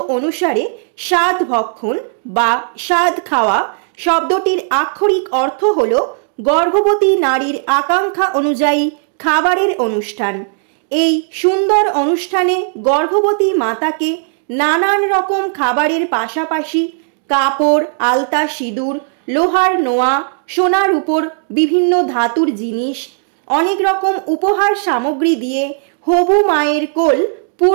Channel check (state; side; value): silent; left; 69 dB below the other